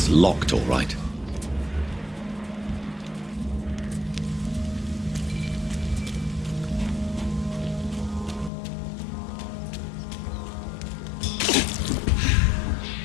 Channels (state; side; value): drops out; right; at 8.5 s